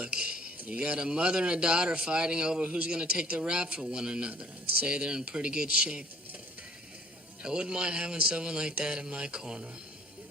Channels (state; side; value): normal; both; correlation 0.56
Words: you got a mother and a daughter fighting over who's gonna take the rap for one another. I'd say they're in pretty good shape. I wouldn't mind having someone like that in my corner.